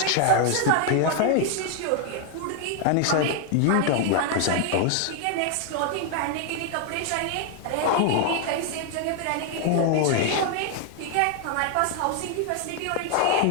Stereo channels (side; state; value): both; different; correlation 0.00